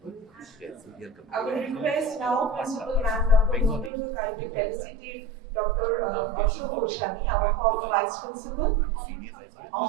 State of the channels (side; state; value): left; drops out; at 3.9 s